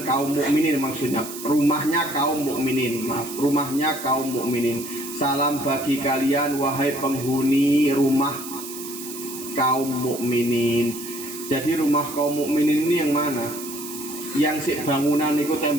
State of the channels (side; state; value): right; noise; hiss, 11 dB below the sound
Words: kaum mukminin maksudnya, rumahnya kaum mukminin, maaf, rumahnya kaum mukminin. Salam bagi kalian wahai penghuni rumah kaum mukminin. Jadi rumah kaum mukminin ini yang mana? Yang si bangunan itu